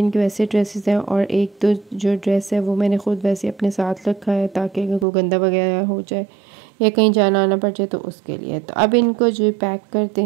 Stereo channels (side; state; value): left; drops out; at 5.1 s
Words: के वैसे ड्रेसेस हैं और एक तो जो ड्रेस है वो मैंने खुद वैसे अपने साथ रखा है ताकि अगर कोई गंदा वगैरह हो जाए या कहीं जाना आना पड़ जाए तो उसके लिए। तो अब इनको जो पैक करते